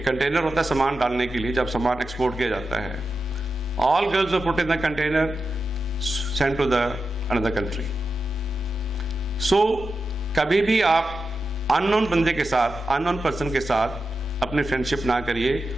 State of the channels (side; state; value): both; normal; correlation 0.90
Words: कंटेनर होता है सामान डालने के लिए, जब सामान एक्सपोर्ट किया जाता है। All girls were put in the container, sent to the another country. So कभी भी आप अननोन बंदे के साथ, अननोन पर्सन के साथ अपनी फ्रेंडशिप ना करिए,